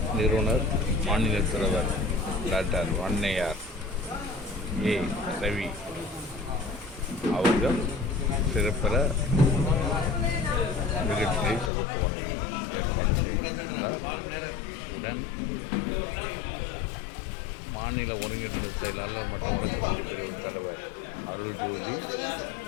நிறுவனர் மாநில தலைவர் டாக்டர் வன்னையார் A. ரவி அவர்கள் சிறப்பிற நிகழ்ச்சியை தொகுத்து வழங்கி ஏற்பாடு செய்திருந்தார். உடன் மாநில ஒருங்கிணைந்த செயலாளர் மற்றும் வழக்கறிஞர் பிரிவு தலைவர் அருள்ஜோதி,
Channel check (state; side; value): drops out; right; at 11.7 s